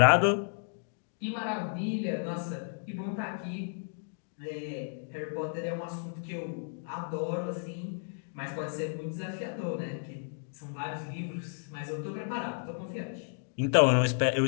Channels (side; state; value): right; silent; digital silence